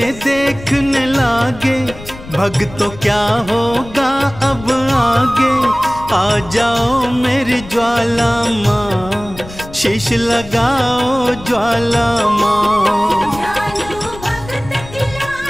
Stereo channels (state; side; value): noise; left; rumble, 16 dB below the sound